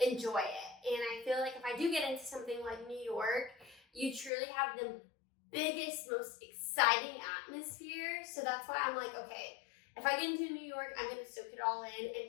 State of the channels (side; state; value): right; drops out; at 4.3 s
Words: enjoy it. And I feel like if I do get into something like New York, you truly have the biggest, most exciting atmosphere. So that's why I'm like, okay, if I get into New York, I'm going to soak it all in